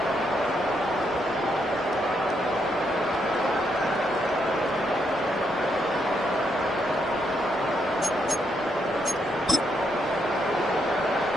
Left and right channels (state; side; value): normal; both; correlation 0.77